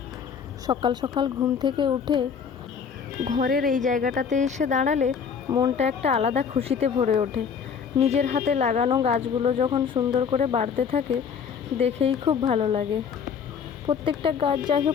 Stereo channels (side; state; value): right; quieter; 6.7 dB